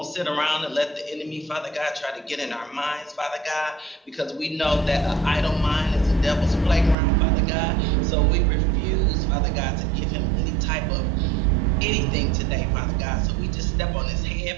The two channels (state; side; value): drops out; left; at 7.0 s